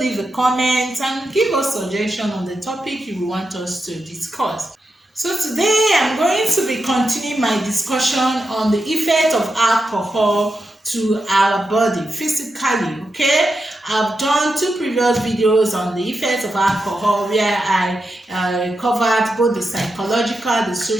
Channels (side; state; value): both; normal; correlation 0.87